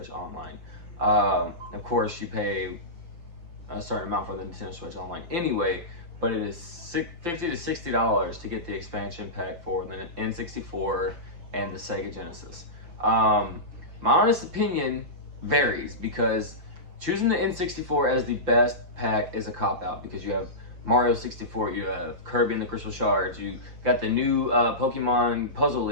Online. Of course, you pay a certain amount for the Nintendo Switch Online anyway, but it is $50 to $60 to get the expansion pack for the N64 and the Sega Genesis. My honest opinion varies because choosing the N64 as the best pack is a cop-out because you have Mario 64, you have Kirby and the Crystal Shards, you got the new Pokemon Puzzle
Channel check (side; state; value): left; late; 5.8 ms